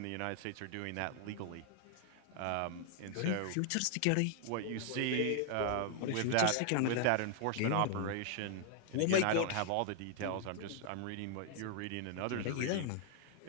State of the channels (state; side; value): different; both; correlation 0.00